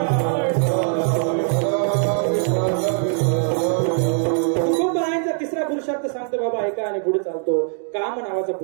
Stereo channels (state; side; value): silent; left; 62 dB below the other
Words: तुकोबारायांचा तिसरा पुरुषार्थ सांगतो बाबा ऐका आणि पुढे चालतो. काम नावाचा